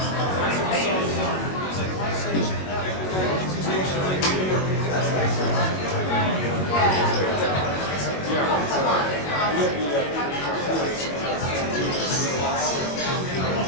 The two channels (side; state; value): right; late; 22 ms